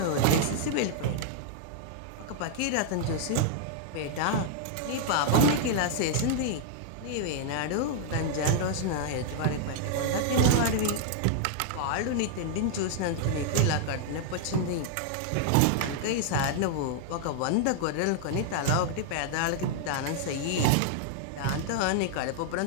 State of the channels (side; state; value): both; different; correlation -0.01